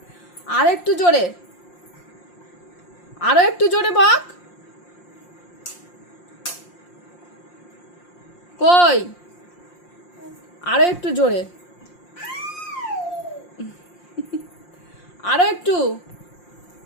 আর একটু জোরে, আরো একটু জোরে বক। কই, আরো একটু জোরে, আরো একটু,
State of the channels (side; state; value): right; late; 5.7 ms